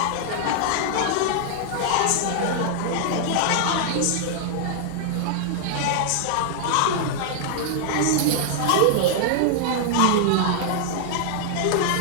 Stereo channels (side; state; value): both; different; correlation 0.00